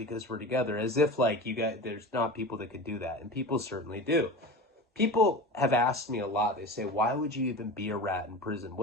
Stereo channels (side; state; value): both; normal; correlation 0.31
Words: we're together. As if like you got, there's not people that could do that, and people certainly do. People have asked me a lot. They say, why would you even be a rat in prison?